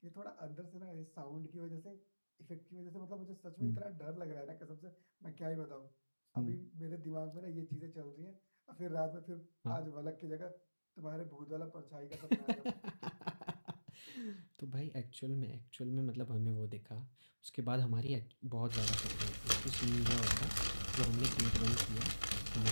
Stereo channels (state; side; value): inverted; both; correlation -1.00